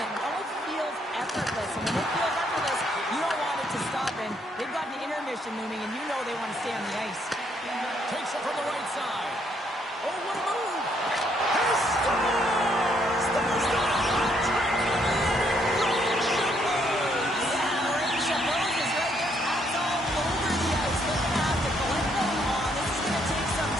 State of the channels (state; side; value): normal; both; correlation 0.71